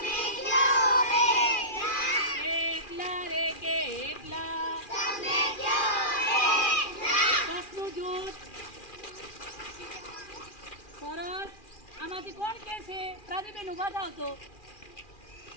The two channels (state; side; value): late; right; 2.4 ms